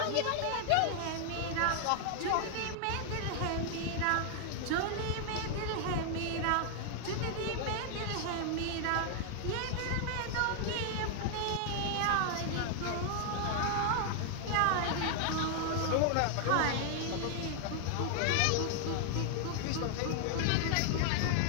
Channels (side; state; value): both; different; correlation 0.00